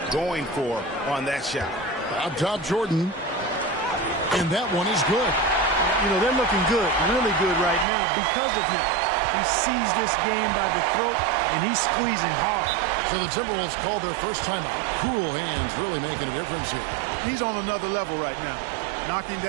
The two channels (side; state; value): left; drops out; at 7.9 s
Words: going for on that shot. Up top, Jordan. And that one is good. You know, they're looking good, really good right now because of him. He sees this game by the throat, and he's squeezing hard. So the Timberwolves called their first timeout. Cool hands really making a difference here. He's on another level right now. Knocking